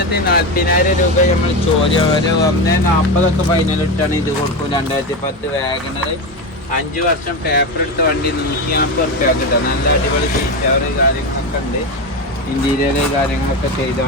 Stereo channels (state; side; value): normal; both; correlation 0.17